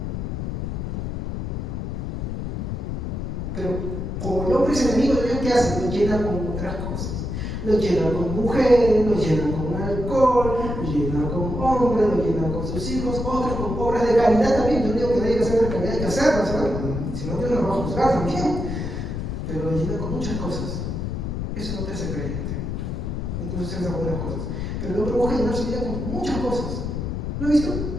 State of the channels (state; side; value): noise; left; rumble, 3 dB below the sound